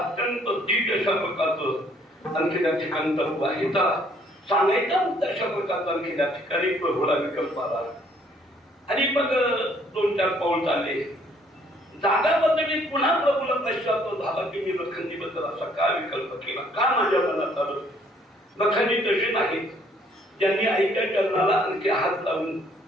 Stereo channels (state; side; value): normal; both; correlation 0.63